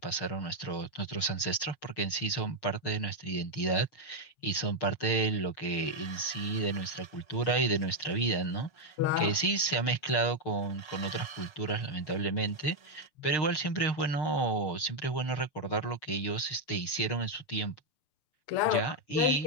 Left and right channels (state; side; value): late; right; 6.5 ms